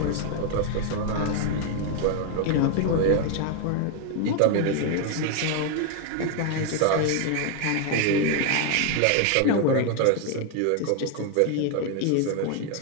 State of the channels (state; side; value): different; both; correlation 0.01